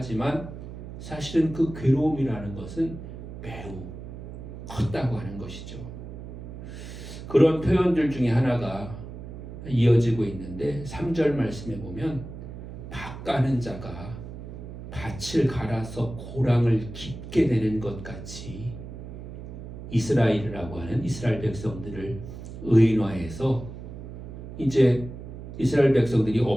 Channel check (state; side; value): noise; right; hum, 11 dB below the sound